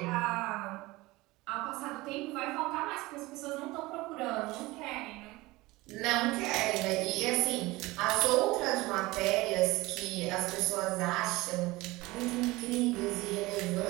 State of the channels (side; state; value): left; quieter; 20.7 dB